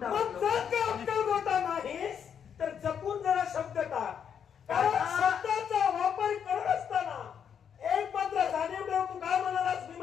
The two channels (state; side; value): quieter; right; 7.9 dB